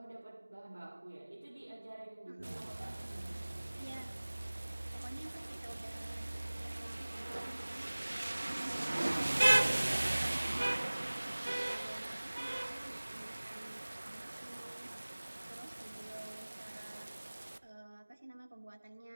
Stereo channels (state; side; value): inverted; both; correlation -1.00